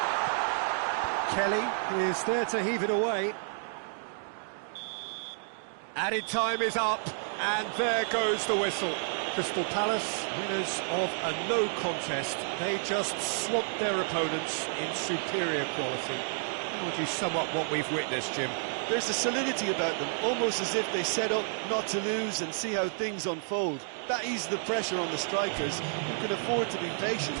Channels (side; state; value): left; silent; digital silence